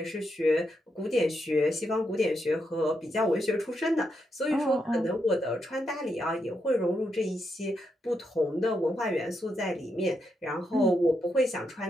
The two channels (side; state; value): both; normal; correlation 0.82